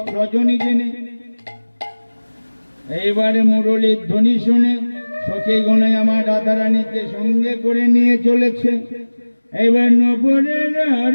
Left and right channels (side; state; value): both; inverted; correlation -1.00